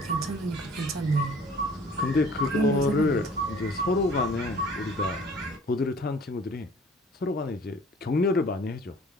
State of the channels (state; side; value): normal; both; correlation 0.50